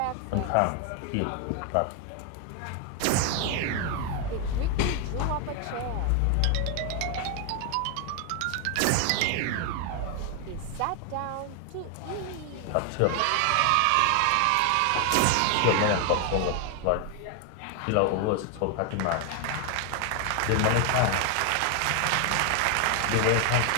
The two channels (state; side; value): different; both; correlation 0.01